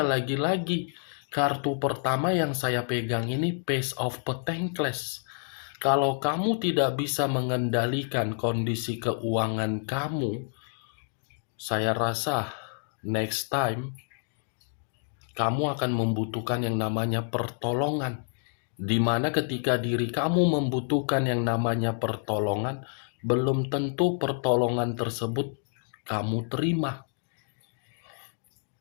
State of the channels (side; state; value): right; silent; digital silence